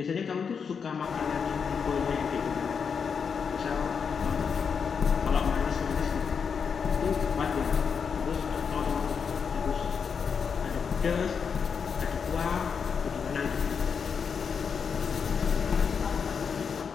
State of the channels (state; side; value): quieter; right; 6.3 dB